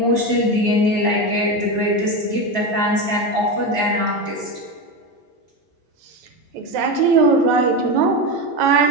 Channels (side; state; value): both; normal; correlation 0.17